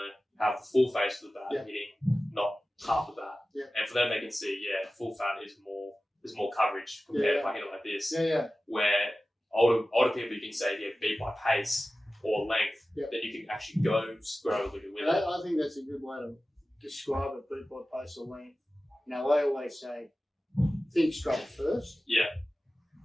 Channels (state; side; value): normal; both; correlation 0.96